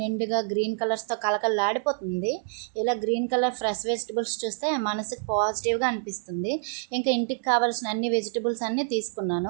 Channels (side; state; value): left; silent; 60 dB below the other